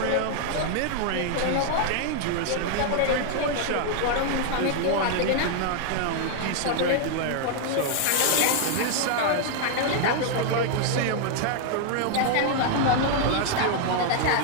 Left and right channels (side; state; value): both; different; correlation 0.00